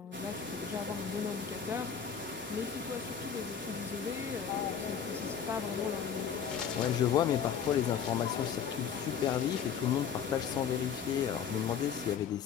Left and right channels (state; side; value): quieter; right; 7.5 dB